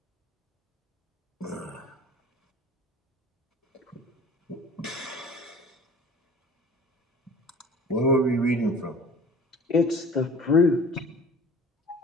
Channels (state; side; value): normal; both; correlation 0.44